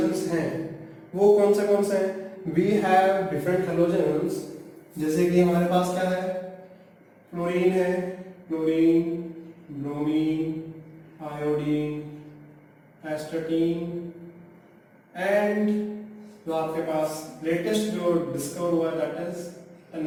हैं वो कौन से हैं? We have different halogens, जैसे कि हमारे पास क्या है? फ्लोरीन है, fluorine, bromine, iodine, astatine and जो आपके पास लेटेस्ट जो डिस्कवर हुआ है दैट इज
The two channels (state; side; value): identical; both; correlation 1.00